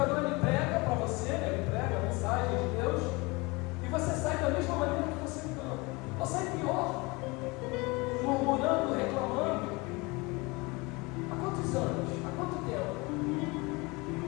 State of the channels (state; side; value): quieter; right; 25.6 dB